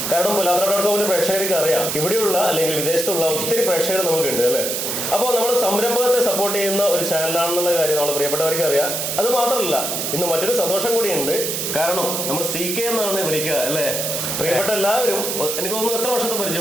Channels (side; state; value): right; noise; hiss, 2 dB below the sound